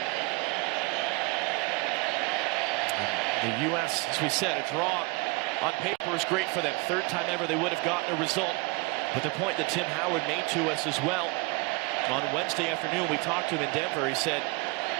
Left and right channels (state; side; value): quieter; left; 26.9 dB